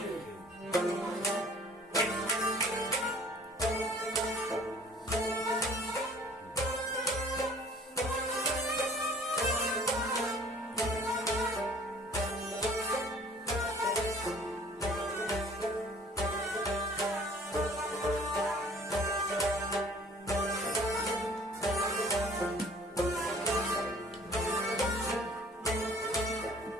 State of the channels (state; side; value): normal; both; correlation 0.52